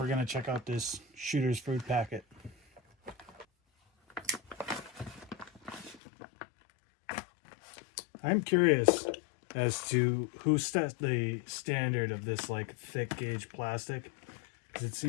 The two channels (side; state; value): right; drops out; at 6.0 s